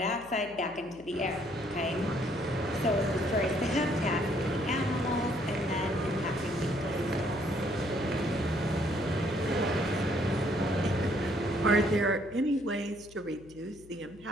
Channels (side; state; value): left; noise; hum, 23 dB below the sound